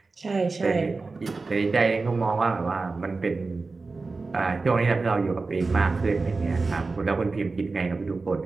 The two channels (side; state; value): left; quieter; 3.9 dB